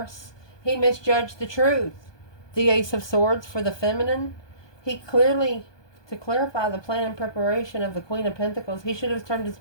He misjudged the truth. The Ace of Swords for the feminine. He clearly, to clarify the plan and preparation of the Queen of Pentacles, he should have turned his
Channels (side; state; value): right; late; 1.2 ms